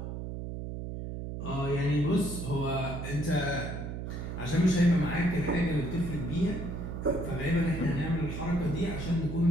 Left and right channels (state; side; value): noise; right; hum, 6 dB below the sound